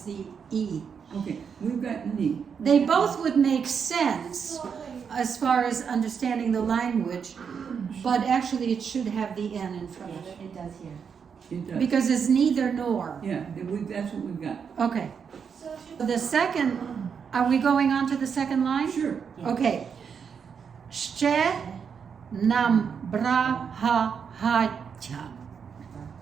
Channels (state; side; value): quieter; left; 6.7 dB